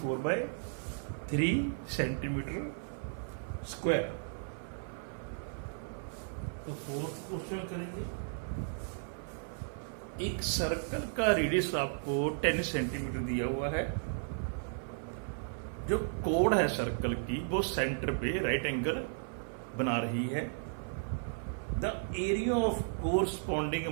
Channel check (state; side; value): silent; left; 55 dB below the other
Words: centimetre square. तो फोर्थ क्वेश्चन करेंगे। एक सर्कल का रेडियस आपको 10 सेंटीमीटर दिया हुआ है। जो कोड है सर्कल की वो सेंटर पे राइट एंगल बना रही है। The area of corresponding